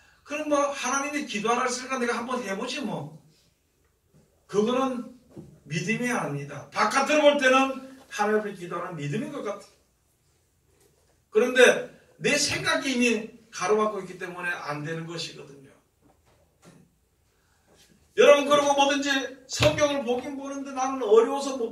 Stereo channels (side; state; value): both; identical; correlation 1.00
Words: 그럼 뭐 하나님이 기도하라 했으니까 내가 한번 해보지 뭐. 그거는 믿음이 아닙니다. 바깥으로 볼 때는 하나님 앞에 기도하는 믿음인 것 같아요. 그런데 내 생각이 이미 가로막고 있기 때문에 안 되는 것이거든요. 여러분, 그리고 뭐든지 성경을 보긴 보는데 나는 어려워서 못